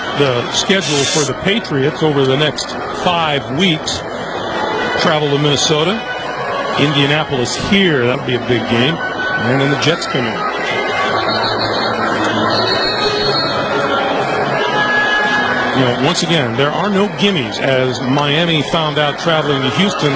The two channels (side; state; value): left; noise; hum, 27 dB below the sound